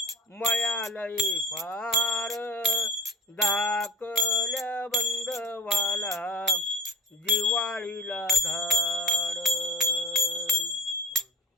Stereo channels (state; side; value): normal; both; correlation 0.36